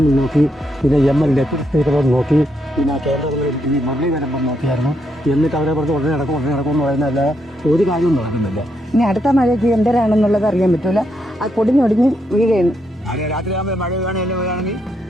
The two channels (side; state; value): both; normal; correlation 0.79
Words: നോക്കി, പിന്നെ MLA സ്പീക്കറും നോക്കി, പിന്നെ കേന്ദ്രങ്ങളിൽ ഈ മുരളീധരൻ നോക്കിയായിരുന്നു. എന്നിട്ട് അവരെ പറഞ്ഞ് ഉടനെ നടക്കും എന്ന് പറയുന്നതല്ല, ഒരു കാര്യവും നടക്കുന്നില്ല. ഇനി അടുത്ത മഴയ്ക്ക് എന്തരാണെന്നുള്ളത് അറിയാൻ പറ്റൂല. അത് പൊടിഞ്ഞൊടിഞ്ഞ് വീഴുകയാണ്. രാത്രിയാകുമ്പോൾ മഴ വീഴുകയാണെങ്കിൽ